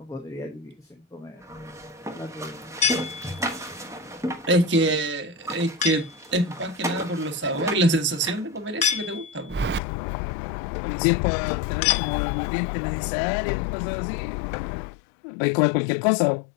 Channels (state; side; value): drops out; right; at 9.8 s